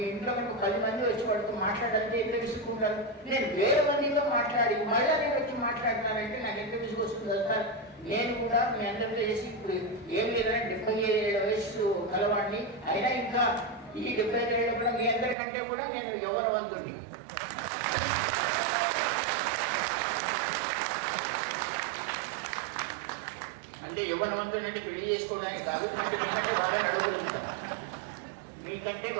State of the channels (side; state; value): left; drops out; at 15.4 s